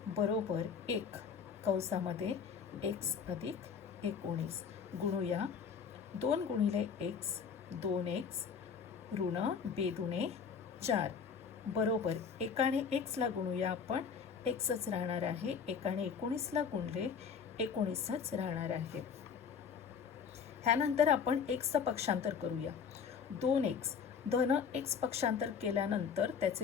बरोबर 1 कंसामध्ये x अधिक 19 गुणूया. 2 गुणिले x 2x ऋण 2 दुणे 4 बरोबर एकाने x ला गुणूया आपण, xच राहणार आहे. एकाने 19 ला गुणले 19च राहणार आहे. ह्यानंतर आपण xचं पक्षांतर करूया. 2x धन x पक्षांतर केल्यानंतर त्याचे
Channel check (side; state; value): right; quieter; 6.5 dB